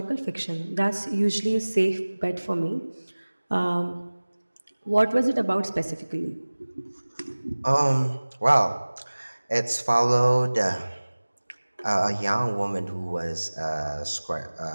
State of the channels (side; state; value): both; inverted; correlation -1.00